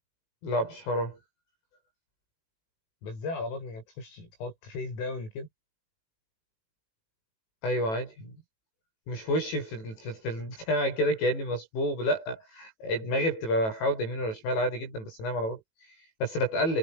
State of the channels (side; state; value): right; late; 18 ms